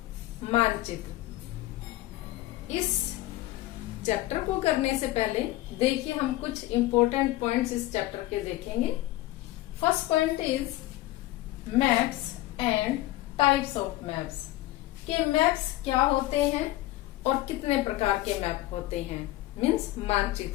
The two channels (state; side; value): quieter; right; 16.8 dB